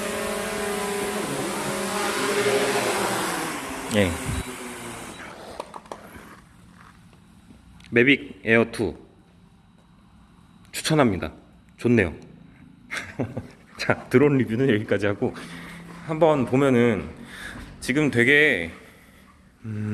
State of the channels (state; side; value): identical; both; correlation 1.00